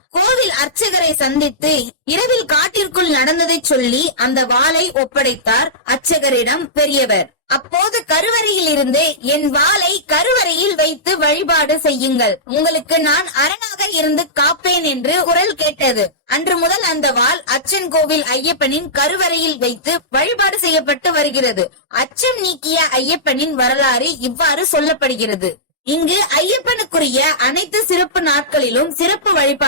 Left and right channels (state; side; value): normal; both; correlation -0.16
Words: கோவில் அர்ச்சகரை சந்தித்து இரவில் காட்டிற்குள் நடந்ததை சொல்லி அந்த வாளை ஒப்படைத்தார் அர்ச்சகரிடம் பெரியவர். அப்போது கருவறையில் இருந்து என் வாளை கருவறையில் வைத்து வழிபாடு செய்யுங்கள், உங்களுக்கு நான் அரணாக இருந்து காப்பேன் என்று குரல் கேட்டது. அன்று முதல் அந்த வாள் அச்சன் கோவில் ஐயப்பனின் கருவறையில் வைத்து வழிபாடு செய்யப்பட்டு வருகிறது. அச்சம் நீக்கிய ஐயப்பனின் வரலாறு இவ்வாறு சொல்லப்படுகிறது. இங்கு ஐயப்பனுக்குரிய அனைத்து சிறப்பு நாட்களிலும் சிறப்பு